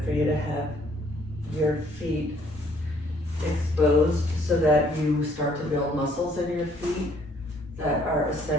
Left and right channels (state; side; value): normal; both; correlation 0.63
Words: for you to have your feet exposed so that you start to build muscles in your feet that are